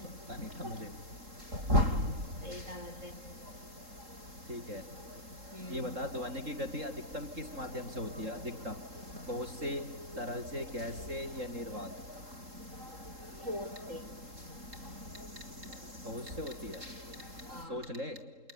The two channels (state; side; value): late; left; 3.7 ms